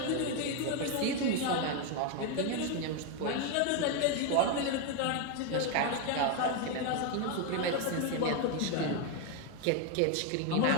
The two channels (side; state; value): both; different; correlation 0.02